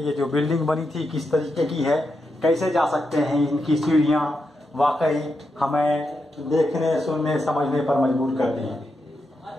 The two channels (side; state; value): both; normal; correlation 0.85